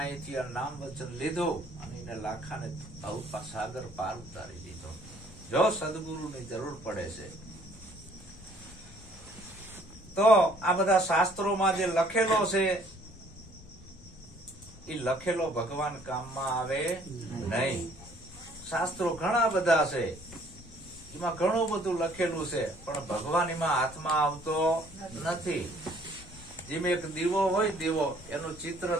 આ નામ વચન લીધું અને એને લાખાને સાગર પાર ઉતારી દીધો. જો સદગુરુની જરૂર પડે છે તો આ બધા શાસ્ત્રોમાં જે લખેલો છે એ લખેલો ભગવાન કામમાં આવે નહીં. શાસ્ત્રો ઘણા બધા છે, એમાં ઘણું બધું લખેલું છે, પણ ભગવાન એમાં હાથમાં આવતો નથી. જેમ એક દીવો હોય, દીવો એનું ચિત્ર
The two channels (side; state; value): left; noise; rumble, 19 dB below the sound